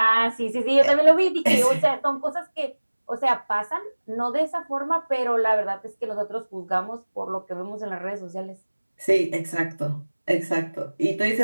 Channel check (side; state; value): both; inverted; correlation -1.00